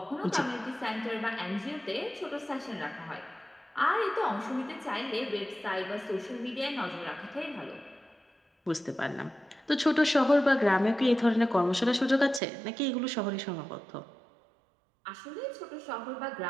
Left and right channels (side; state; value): left; drops out; at 12.4 s